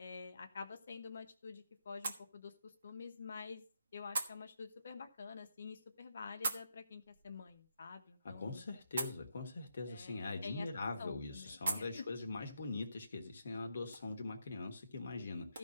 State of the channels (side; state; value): both; inverted; correlation -0.80